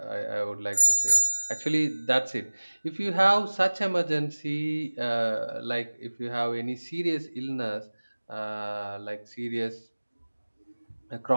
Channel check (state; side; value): inverted; both; correlation -1.00